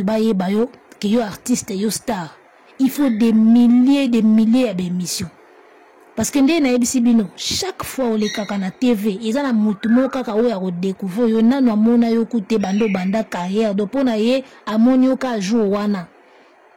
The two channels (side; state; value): both; identical; correlation 1.00